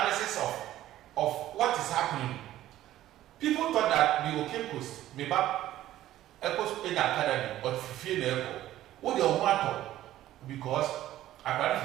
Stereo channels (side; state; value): left; quieter; 13.8 dB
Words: of what is happening. People thought that we were Cape maybe Echoes in the academy or Fifi the Echo. What they want because I